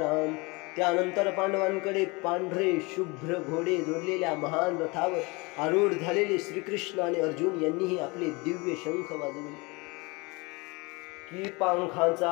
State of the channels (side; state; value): right; quieter; 26.6 dB